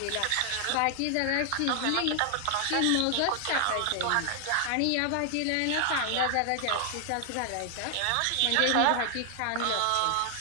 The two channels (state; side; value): different; both; correlation 0.00